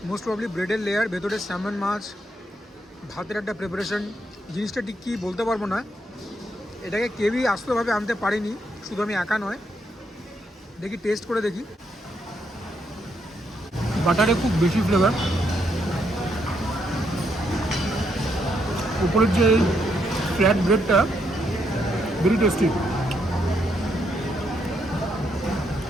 মোস্ট প্রবলি ব্রেডের লেয়ার, ভেতরে স্যামন মাছ, ভাতের একটা প্রিপারেশন, জিনিসটা ঠিক কী বলতে পারবো না, এটাকে কেউই আস্তভাবে আনতে পারিনি, শুধু আমি একা নয়। দেখি টেস্ট করে দেখি, বাটারে খুব বেশি ফ্লেভার, উপরের যে ফ্ল্যাট ব্রেডটা ভেরি টেস্টি,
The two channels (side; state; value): both; normal; correlation 0.77